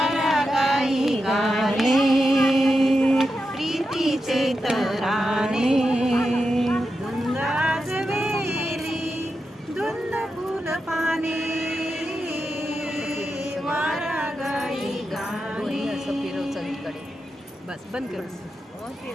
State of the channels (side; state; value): both; normal; correlation 0.88